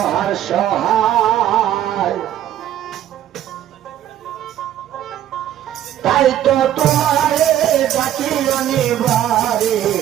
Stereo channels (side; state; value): left; quieter; 11.7 dB